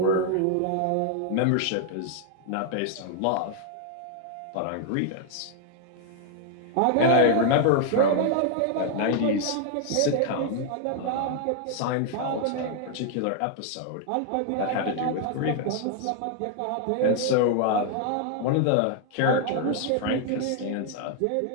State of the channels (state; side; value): different; both; correlation 0.00